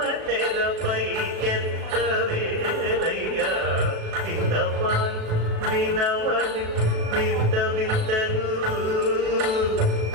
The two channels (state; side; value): late; left; 37 ms